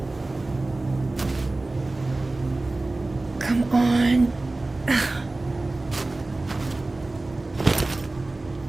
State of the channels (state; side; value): quieter; left; 3.0 dB